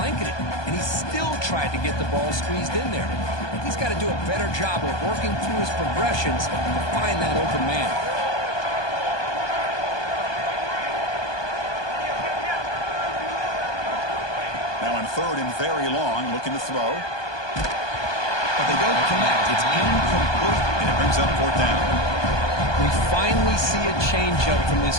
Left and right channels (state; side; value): late; right; 1.2 ms